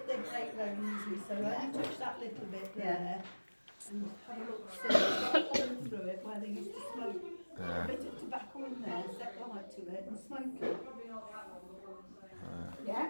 their brake very easily, so I touch that little bit there and have a look, see, it's got a hole through it where they used to smoke. A bit of tobacco in there, set light to it and smoke it.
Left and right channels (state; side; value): inverted; both; correlation -1.00